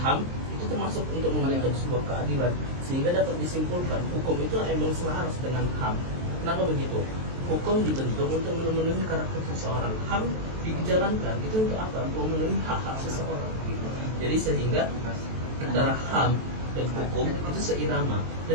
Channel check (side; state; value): left; late; 23 ms